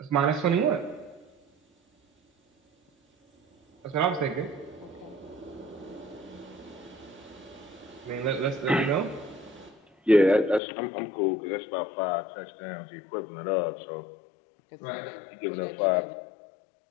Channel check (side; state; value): right; drops out; at 10.6 s